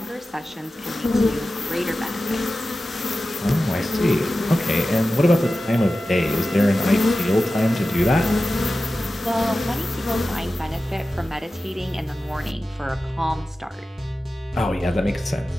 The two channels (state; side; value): normal; both; correlation 0.94